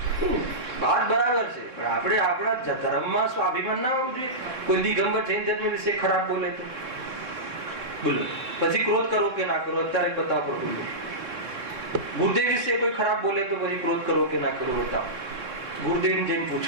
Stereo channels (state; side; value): late; left; 3.6 ms